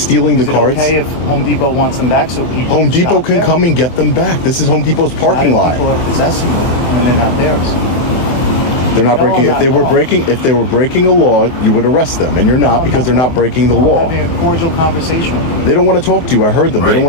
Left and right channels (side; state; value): right; late; 24 ms